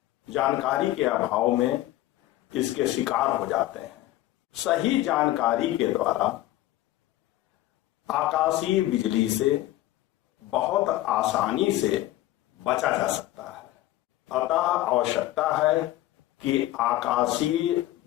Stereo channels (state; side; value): quieter; right; 15.5 dB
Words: जानकारी के अभाव में इसके शिकार हो जाते हैं। सही जानकारी के द्वारा आकाशीय बिजली से बहुत आसानी से बचा जा सकता है। अतः आवश्यकता है कि आकाशीय